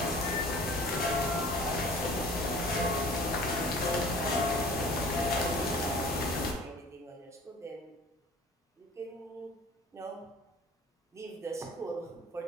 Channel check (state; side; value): normal; both; correlation 0.46